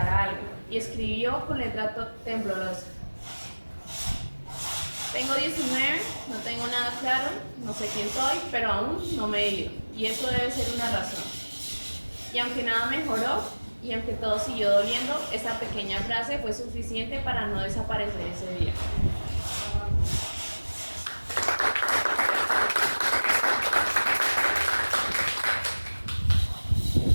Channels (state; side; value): inverted; both; correlation -1.00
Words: algo, y escribió con letra temblorosa. Tengo 19, no tengo nada claro, no sé quién soy, pero aún no me he ido, y eso debe ser una razón. Y aunque nada mejoró, y aunque todo siguió doliendo, esa pequeña frase fue suficiente para no desaparecer ese día.